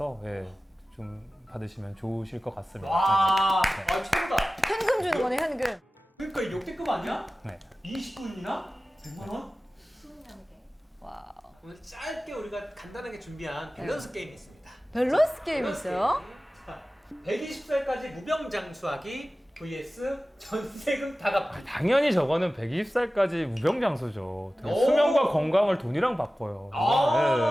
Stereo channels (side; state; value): both; normal; correlation 0.96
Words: 좀 받으시면 좋으실 것 같습니다. 와, 최고다. 현금 주는 거네 현금. 그러니까 이 역대급 아니야? 네. 20분이나 100만 원? 와우. 오늘 짧게 우리가 간단하게 준비한 밸런스 게임이 있습니다. 밸런스 게임 밸런스 있어요? 게임. 자, 120살까지 무병장수하기 vs 전세금 다 갚기. 당연히 저거는 120살까지 무병장수죠. 오! 수명과 건강을 돈이랑 바꿔요.